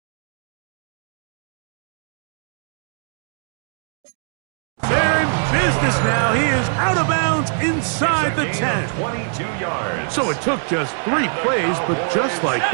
They're in business now. He is out of bounds inside the 10. 22 yards. So it took just 3 plays, but just like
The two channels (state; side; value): silent; left; digital silence